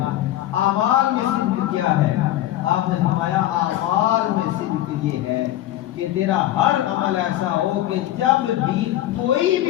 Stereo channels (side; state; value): right; quieter; 13.8 dB